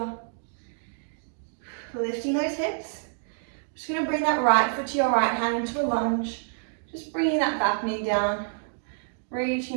Lifting those hips. Just going to bring that right foot to your right hand into a lunge. Just bringing that back knee down. Reaching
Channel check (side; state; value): left; silent; digital silence